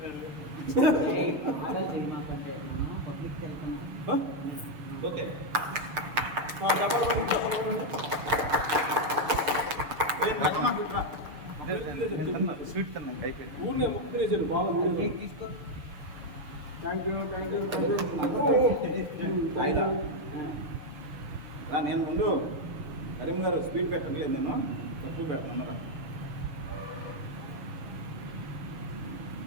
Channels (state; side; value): late; left; 6.7 ms